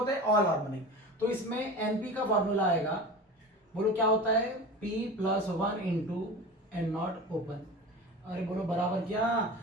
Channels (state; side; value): normal; both; correlation 0.33